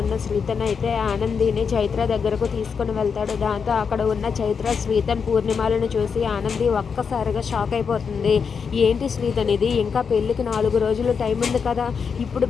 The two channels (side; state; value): right; quieter; 6.1 dB